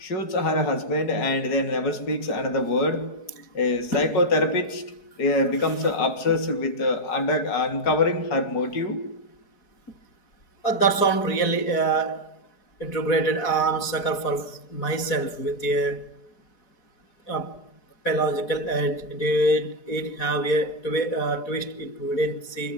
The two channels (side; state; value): right; late; 4.7 ms